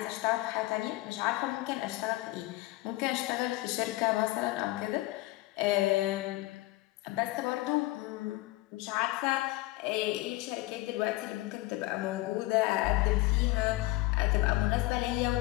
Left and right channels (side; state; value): right; quieter; 19.5 dB